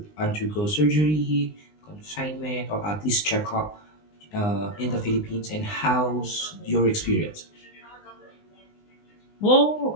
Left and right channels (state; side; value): late; right; 19 ms